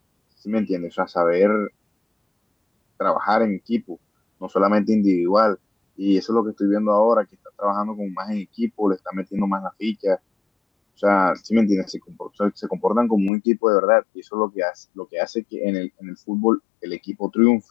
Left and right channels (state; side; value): drops out; right; at 13.3 s